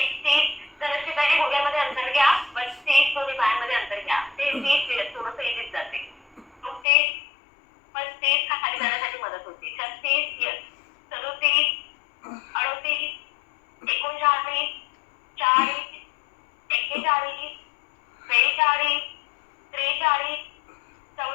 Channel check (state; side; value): drops out; right; at 6.9 s